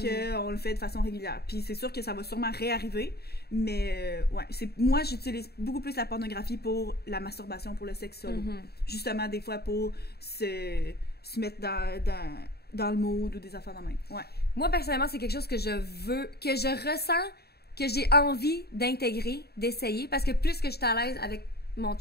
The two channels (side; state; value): right; late; 0.46 ms